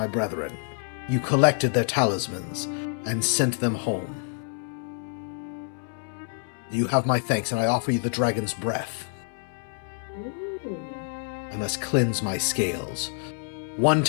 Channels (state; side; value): silent; right; 60 dB below the other